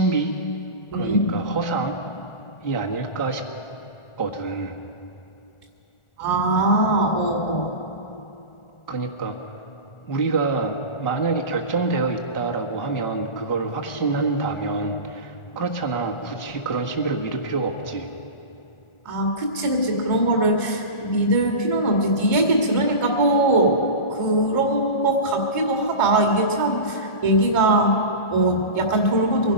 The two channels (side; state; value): right; late; 1.4 ms